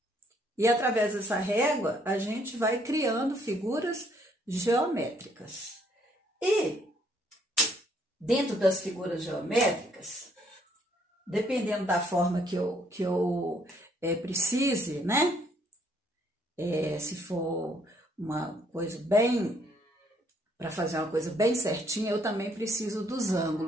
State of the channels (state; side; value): normal; both; correlation 0.67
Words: E através dessa régua, a gente vai criando figuras geométricas. E dentro das figuras geométricas, dependendo da forma que eu precise, né? Se for uma coisa bem, para fazer uma coisa bem certinha, eu também preciso dos